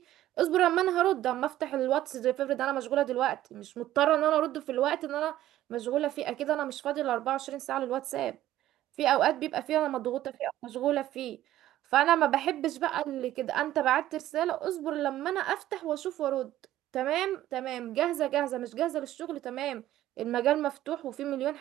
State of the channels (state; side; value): quieter; left; 13.7 dB